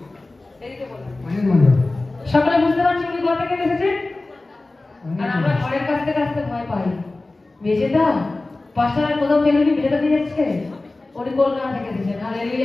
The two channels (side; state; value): right; quieter; 3.1 dB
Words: সকলে বুঝতে পারছি উনি কোথা থেকে এসেছেন? আর আমরা ঘরের কাছতে কাছতে ভয় পাই, বেঁচে দাও পাশার কোথাও কেউ কি বেঁচে দিয়ে যাচ্ছে। উনি কলকাতা থেকে এসেছেন।